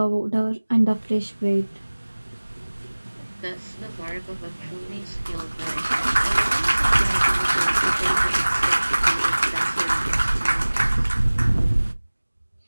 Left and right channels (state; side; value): inverted; both; correlation -1.00